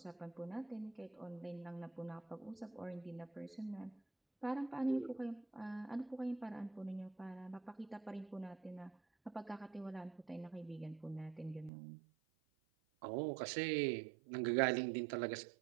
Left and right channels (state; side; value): drops out; left; at 11.7 s